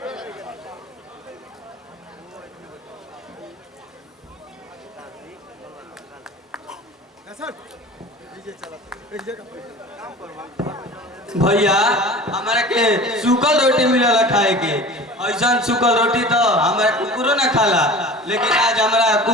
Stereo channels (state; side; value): normal; both; correlation 0.39